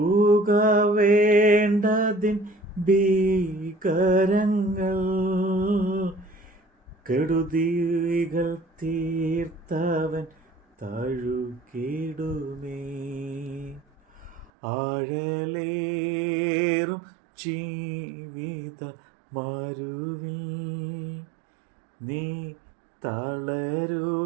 വേണ്ടതിൻ ഭീകരങ്ങൾ കെടുതികൾ തീർത്തവൻ തഴുകിടുമേ. ആഴലേറും ജീവിത മരുവിൽ നീ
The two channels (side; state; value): left; drops out; at 14.5 s